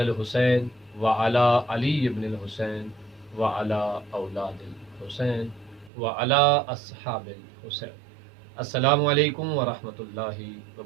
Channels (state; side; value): drops out; left; at 5.9 s